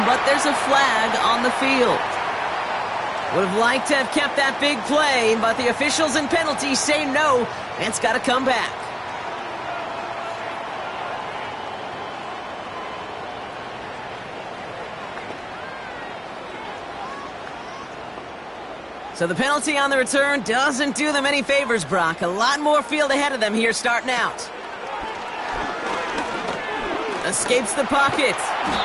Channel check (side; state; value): both; identical; correlation 1.00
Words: but there's a flag on the field. Would have liked to have kept that big play, but the officials and penalties say no, and it's got to come back. So the penalty on the return doesn't do them any favors, Brock. A lot more field ahead of them here starting out. Escapes the pocket.